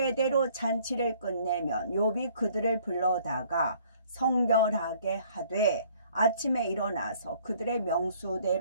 잔치를 끝내면 욥이 그들을 불러다가 성결하게 하되 아침에 일어나서 그들의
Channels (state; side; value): inverted; both; correlation -0.59